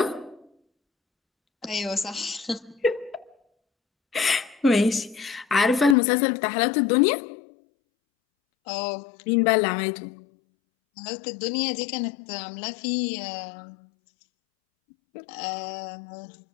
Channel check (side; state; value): right; drops out; at 6.0 s